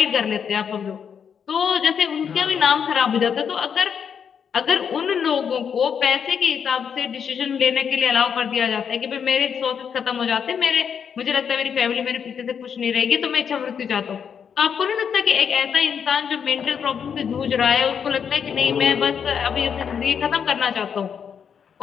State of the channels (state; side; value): quieter; right; 7.3 dB